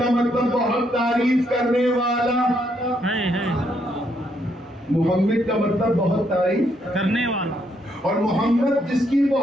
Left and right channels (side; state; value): both; normal; correlation 0.74